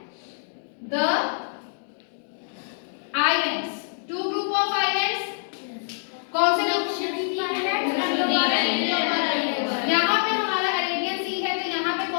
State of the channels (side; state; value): right; silent; digital silence